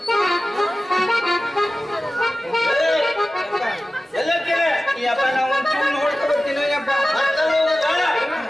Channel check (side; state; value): both; normal; correlation 0.95